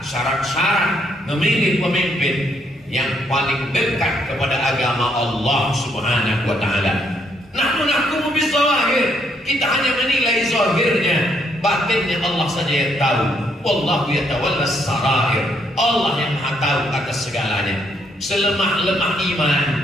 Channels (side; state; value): both; normal; correlation 0.72